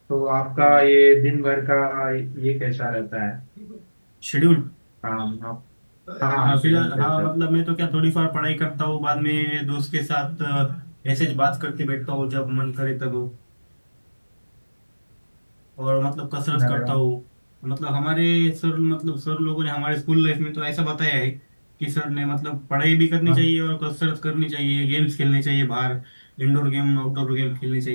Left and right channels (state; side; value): inverted; both; correlation -1.00